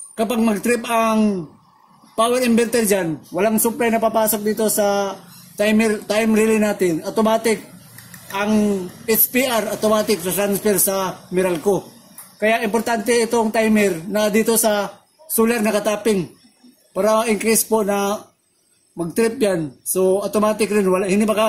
Kapag mag-trip ang power inverter dyan, walang supply na papasok dito sa time relay natin. Automatic ang HPR, automatic transfer sa Meralco. Kaya importante itong timer na dito sa solar nakatapping para in case po na mag-trip yan. So automatic rin,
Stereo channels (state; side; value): identical; both; correlation 1.00